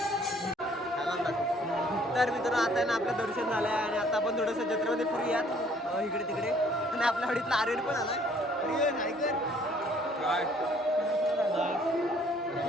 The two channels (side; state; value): both; normal; correlation 0.60